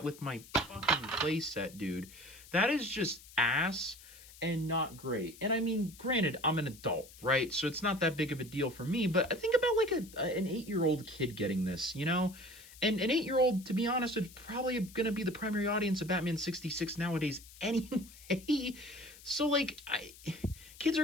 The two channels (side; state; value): left; noise; hiss, 20 dB below the sound